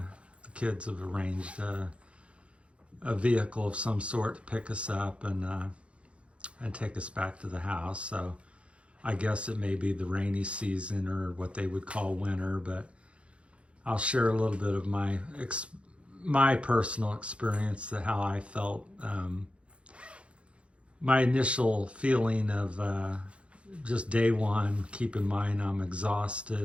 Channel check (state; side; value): late; left; 0.060 ms